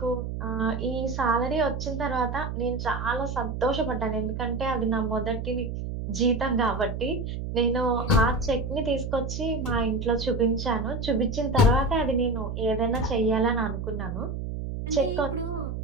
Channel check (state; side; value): noise; right; hum, 5 dB below the sound